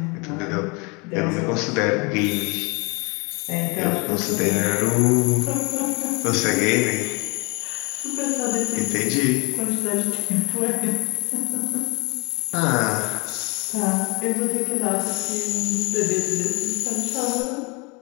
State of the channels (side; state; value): right; quieter; 29.6 dB